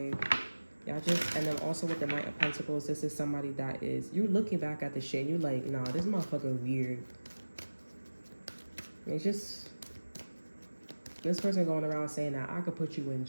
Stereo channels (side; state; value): both; inverted; correlation -1.00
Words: Y'all just, and then also with the Knight of Pentacles, this is somebody that is, you're looking back at the shit and you're like, nah, this motherfucker weird. It's just, this person going around saying that I could put you in